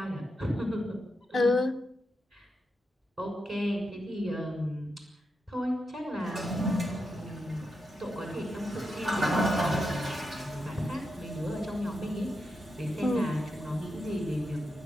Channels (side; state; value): both; normal; correlation 0.86